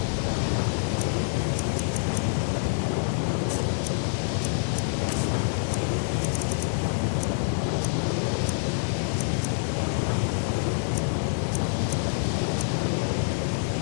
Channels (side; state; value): right; silent; digital silence